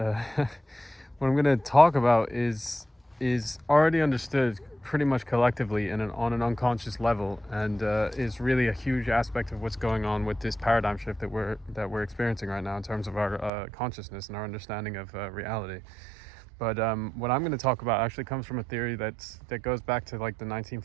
going to talk about is already understood pretty much collectively on an unconscious level, and is really a huge aspect of what's going on with this paradigm shift that we're experiencing right now in terms of our consciousness and our understanding of reality. But what I'm going to talk about actually comes from a theory that goes back to like the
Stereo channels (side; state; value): left; drops out; at 13.5 s